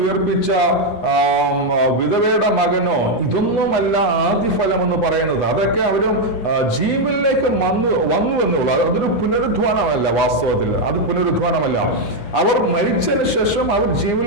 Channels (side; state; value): right; late; 9.8 ms